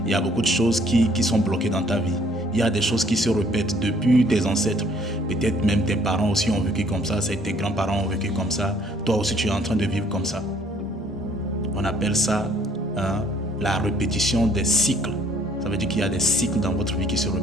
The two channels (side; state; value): both; normal; correlation 0.61